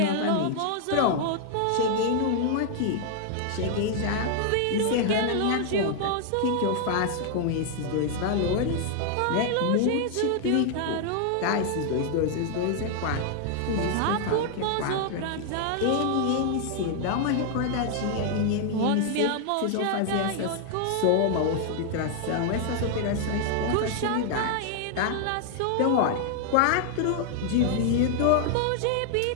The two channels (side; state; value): both; different; correlation 0.00